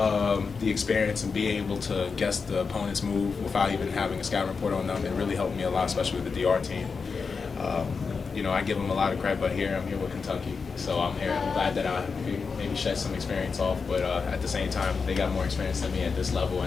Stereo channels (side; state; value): right; quieter; 5.1 dB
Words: experience and being able to guess the opponent's move without even having a scouting report on them, it really helped me a lot, especially with the DR team. I give them a lot of credit, but I'm here with Kentucky, so I'm here. I'm glad that I maybe shed some experience off, but at the same time, they got more experience than me at this level,